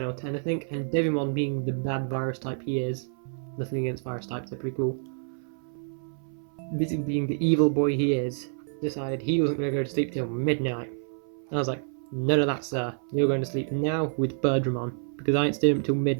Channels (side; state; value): left; silent; 59 dB below the other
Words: or 10, I think, and Devimon, being the bad virus type he is, nothing against virus types, they're pretty cool, basically being the evil boy he is, decided he wasn't going to go to sleep till midnight. And I was like, none of that, sir. You're going to sleep now with Birdramon, because I ain't staying up till